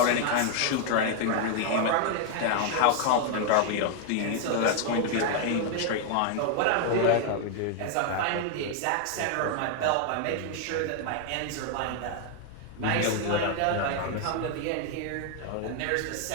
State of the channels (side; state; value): both; different; correlation 0.00